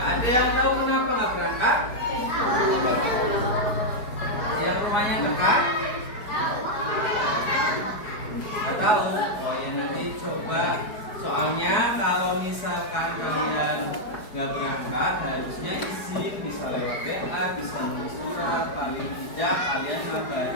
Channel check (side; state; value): right; late; 4.8 ms